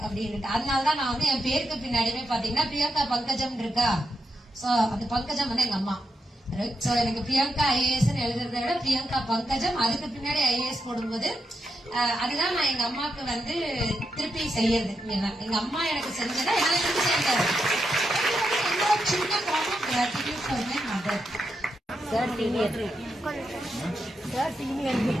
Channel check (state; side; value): normal; both; correlation 0.84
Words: அப்படின்னு. அதனாலதான் நான் வந்து என் பேருக்கு பின்னாடியுமே பாத்தீங்கன்னா பிரியங்கா பங்கஜம் இருக்கா. சோ அந்த பங்கஜம் வந்து எங்க அம்மா. சோ எனக்கு பிரியங்கா ஐஏஎஸ் எழுதுறதை விட பிரியங்கா பங்கஜம், அதுக்கு பின்னாடி ஐஏஎஸ் போடும்போது அதுதான் நான் எங்க அம்மாவுக்கு வந்து திருப்பி செய்யறது. எங்க அம்மா எனக்கு செஞ்சதை என்னால திருப்பி செய்யறது. சின்ன form of gratitude for my mother. Sir senior